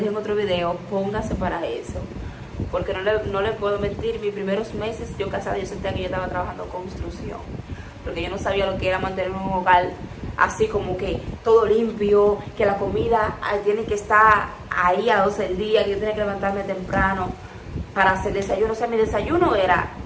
en otro video, póngase para eso. Porque no le puedo mentir, mis primeros meses yo casada, yo sentía que yo estaba trabajando construcción, porque yo no sabía lo que era mantener un hogar así como que todo limpio, que la comida tiene que estar ahí a 12 del día, que yo tenía que levantarme temprano para hacer desayuno. O sea, mi desayuno era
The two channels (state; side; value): identical; both; correlation 1.00